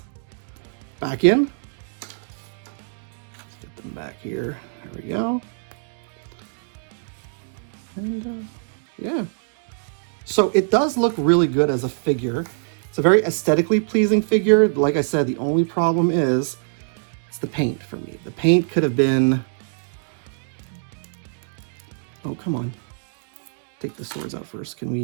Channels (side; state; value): left; silent; digital silence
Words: back in. Let's get them back here. There we go. And yeah. So it does look really good as a figure. It's a very aesthetically pleasing figure. Like I said, the only problem is it's the paint for me. The paint could have been... Oh, come on. Take the swords out first. Can